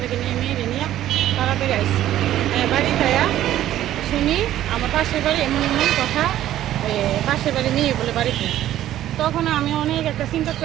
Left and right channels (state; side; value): quieter; left; 12.8 dB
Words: নিয়ে মেয়েরে নিয়ে তাড়াতাড়ি আইসি। বাড়ি যাইয়া শুনি আমার পাশের বাড়ি এমন কথা, পাশের বাড়ি মেয়ে বলে বাড়িতে। তখন আমি অনেক একটা চিন্তা